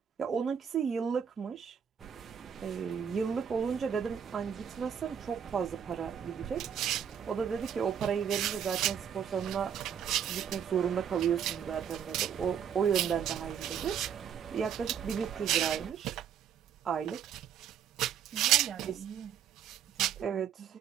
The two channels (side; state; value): left; quieter; 8.3 dB